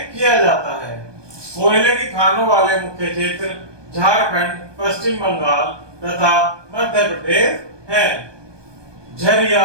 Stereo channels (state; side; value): late; left; 1.2 ms